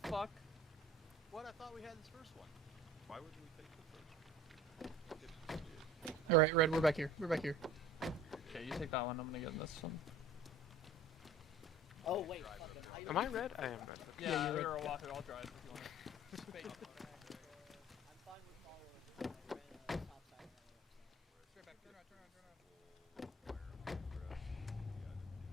fuck? What? I thought we had this first one. Why would we take the first? All right, Red, we're back here. We're back here. Okay, you take that one. I'm gonna get in this one. Oh wait. Am I red? I am red. Yeah, you're a Wahoo. I'll drive if you want. I'm fine with following. Stop sign.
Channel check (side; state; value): both; normal; correlation 0.44